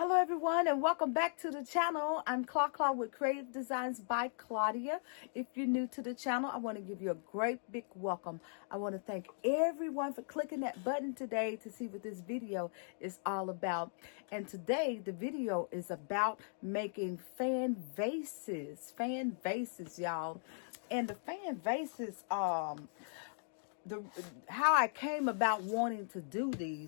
everyone and welcome back to the channel. I'm Claw with Creative Designs by Claudia. If you're new to the channel, I want to give you a great big welcome. I want to thank everyone for clicking that button today to see what this video is all about. And today the video is about making fan vases, y'all. And the fan vases, how I came about wanting to do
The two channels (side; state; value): right; silent; digital silence